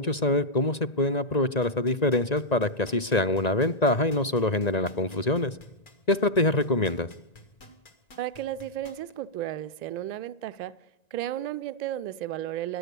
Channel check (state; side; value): late; right; 1.9 ms